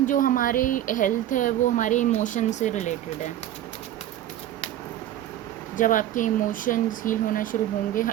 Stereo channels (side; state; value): left; quieter; 12.4 dB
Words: जो हमारे हेल्थ है वो हमारे इमोशन से रिलेटेड है। जब आपके इमोशंस हील होना शुरू होंगे,